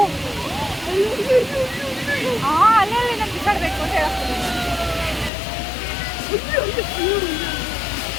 ಅಲ್ಲಲ್ಲಿ ನಾನು ಬಿಸಾಡಬೇಕು ಅಂತ ಹೇಳ್ತೀನಿ.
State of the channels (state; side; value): drops out; right; at 5.3 s